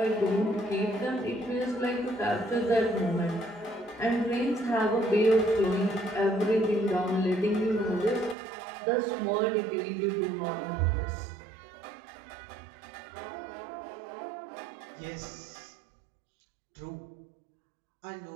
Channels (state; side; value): drops out; left; at 8.3 s